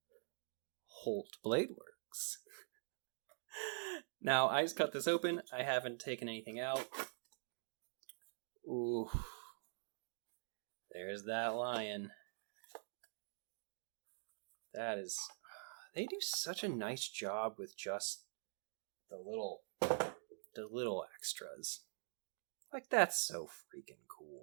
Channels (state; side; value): silent; left; digital silence